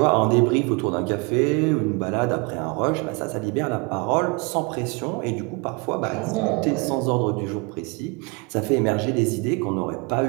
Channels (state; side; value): quieter; left; 29.6 dB